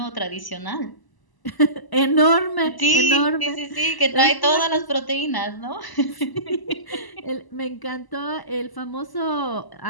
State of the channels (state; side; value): late; right; 1.0 ms